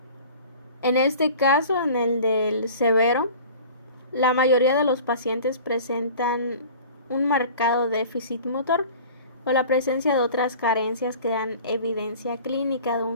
En este caso, en el del severo, la mayoría de los pacientes presentan un marcado déficit motor o la presencia de otras carencias que dan evidencia clínica de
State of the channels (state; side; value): inverted; both; correlation -0.43